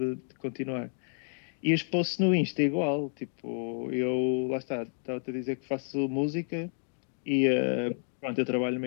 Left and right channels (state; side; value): silent; right; digital silence